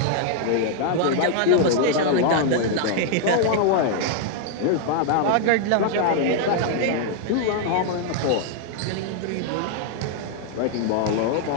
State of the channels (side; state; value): both; different; correlation 0.00